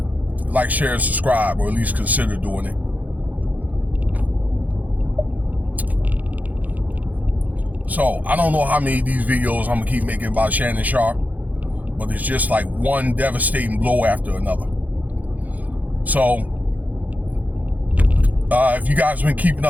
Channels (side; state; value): left; late; 0.079 ms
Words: Like, share, and subscribe, or at least consider doing it. So, I don't know how many of these videos I'm going to keep making about Shannon Sharpe, but it's just like one devastating blow after another. So, if you guys have been keeping